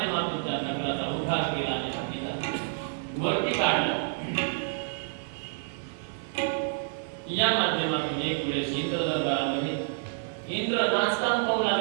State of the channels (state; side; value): silent; left; 57 dB below the other